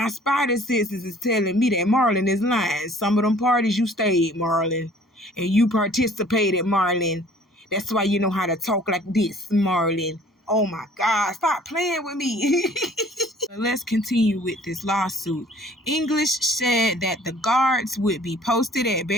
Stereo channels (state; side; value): normal; both; correlation 0.54